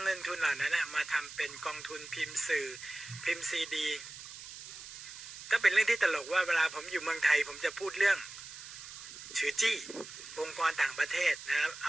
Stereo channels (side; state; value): right; noise; hiss, 13 dB below the sound